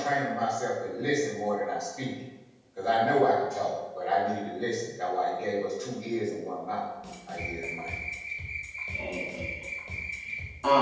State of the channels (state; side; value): identical; both; correlation 1.00